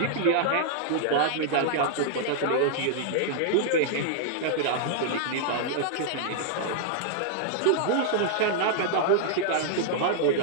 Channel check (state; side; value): different; both; correlation -0.01